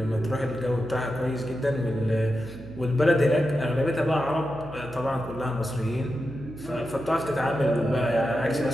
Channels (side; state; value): right; noise; hum, 16 dB below the sound